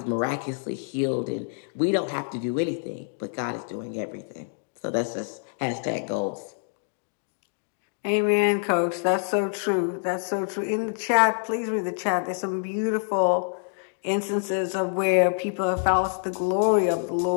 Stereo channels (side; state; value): right; silent; digital silence